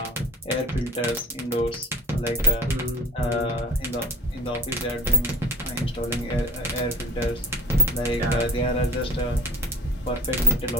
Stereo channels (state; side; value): normal; both; correlation 0.44